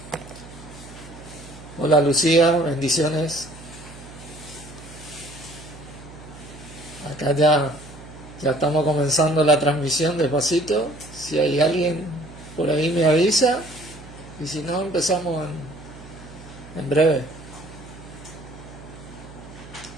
Hola Lucía, bendiciones. Acá ya estamos comenzando la transmisión despacito. Si hay alguien por ahí me avisa. Y si no, empezamos en breve.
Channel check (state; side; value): noise; right; hum, 17 dB below the sound